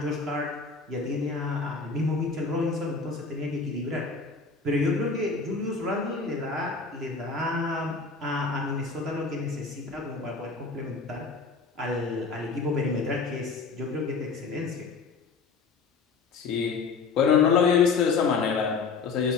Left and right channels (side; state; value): right; quieter; 4.7 dB